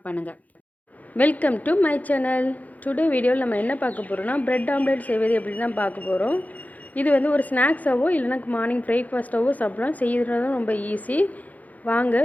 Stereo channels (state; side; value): late; right; 0.077 ms